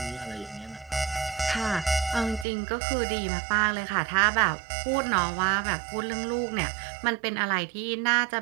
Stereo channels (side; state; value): left; drops out; at 2.5 s